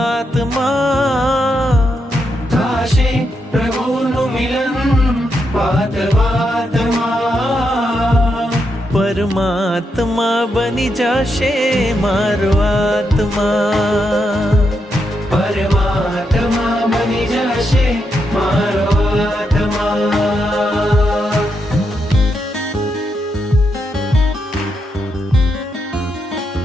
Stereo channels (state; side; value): normal; both; correlation 0.82